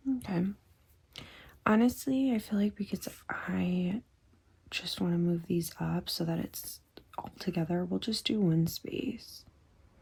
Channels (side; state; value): both; identical; correlation 1.00